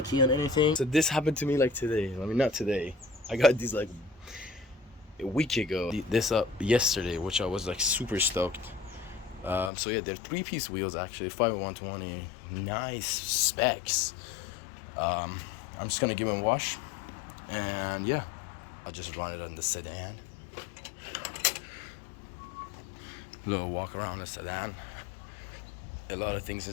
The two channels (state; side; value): drops out; right; at 9.7 s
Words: on anything. So this happened to me like today. I mean, not today. I got these like a week ago. This up yesterday, which I was like super stoked. So yeah, they're 3-piece wheels actually, 5/120, nice specs. I'm just gonna give them a wash, and yeah, I'll just run it on the Sedan. little walk around the Sedan. A lot of things